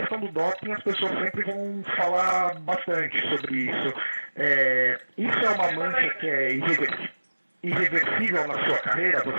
do doping, as pessoas sempre vão falar bastante sobre isso. Isso é uma mancha que é irreversível na sua carreira,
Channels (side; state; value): both; inverted; correlation -1.00